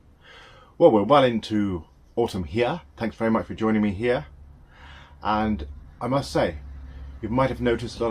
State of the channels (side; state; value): both; identical; correlation 1.00